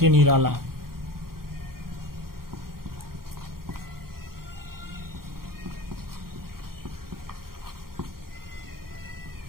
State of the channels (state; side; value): late; left; 0.92 ms